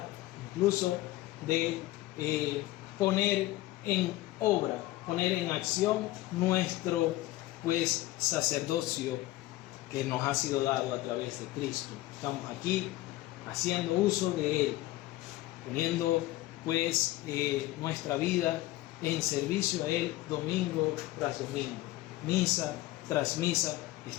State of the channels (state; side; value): quieter; right; 17.3 dB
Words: incluso de poner en obra, poner en acción nuestro sacerdocio que nos ha sido dado a través de Cristo. Estamos aquí haciendo uso de Él, poniendo nuestra vida en servicio a Él domingo tras domingo, misa tras misa.